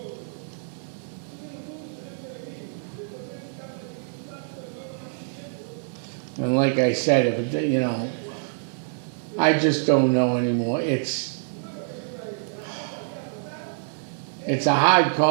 And like I said, I just don't know anymore. It's a hard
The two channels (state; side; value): silent; left; digital silence